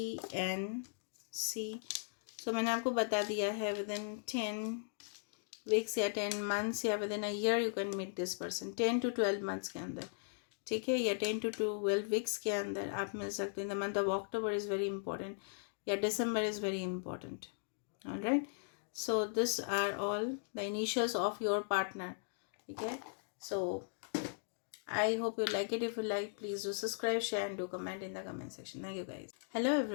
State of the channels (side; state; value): right; silent; digital silence